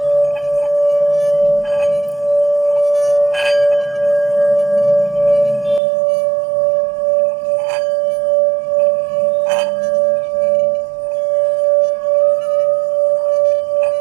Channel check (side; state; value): left; drops out; at 5.8 s